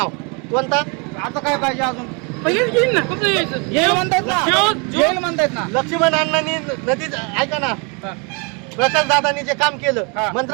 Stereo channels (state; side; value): quieter; left; 33.4 dB